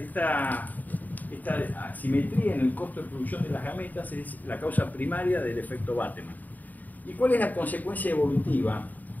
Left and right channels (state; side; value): late; right; 0.083 ms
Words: asimetría en el costo de producción de las gametas es la causa primaria del efecto Bateman. ¿Y cuál es la consecuencia evolutiva